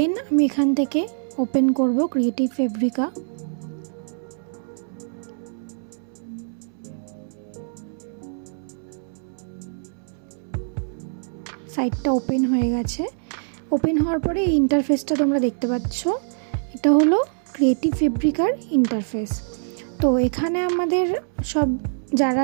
আমি এখান থেকে ওপেন করব ক্রিয়েটিভ ফেব্রিকা। সাইটটা ওপেন হয়ে গেছে। ওপেন হওয়ার পরে এই ইন্টারফেসটা তোমরা দেখতে পাচ্ছ, এটা হলো ক্রিয়েটিভ ফেব্রিকার ইন্টারফেস। তো এখানে আমাদের সব যারা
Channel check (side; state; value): left; silent; 63 dB below the other